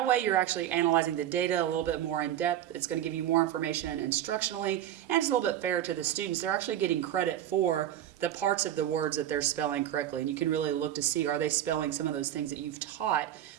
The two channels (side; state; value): left; quieter; 11.5 dB